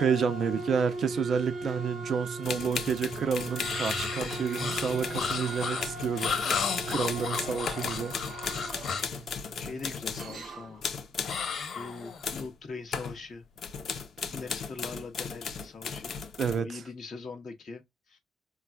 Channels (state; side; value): normal; both; correlation 0.71